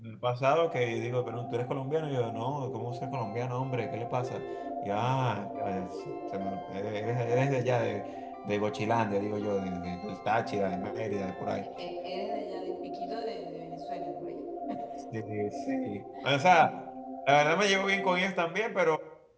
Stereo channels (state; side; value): identical; both; correlation 1.00